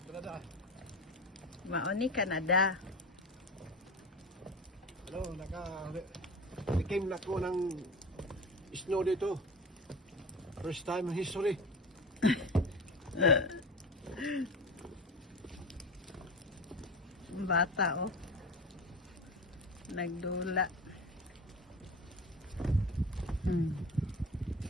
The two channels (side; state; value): both; normal; correlation 0.30